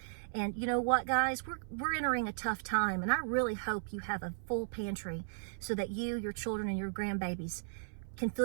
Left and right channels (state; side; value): silent; left; 54 dB below the other